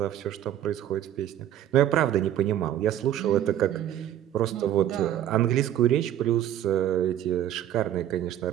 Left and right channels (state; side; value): quieter; left; 11.6 dB